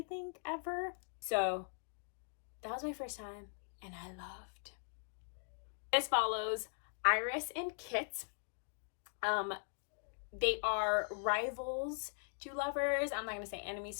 think, ever. So that was my first time, and I loved. This follows Iris and Kit. They are rivals to lovers. I'm not going to say enemies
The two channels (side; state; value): right; silent; digital silence